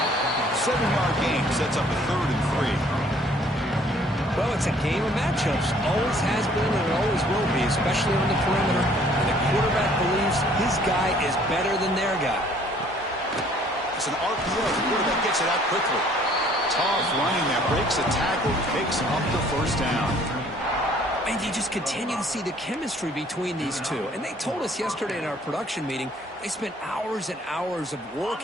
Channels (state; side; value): normal; both; correlation 0.58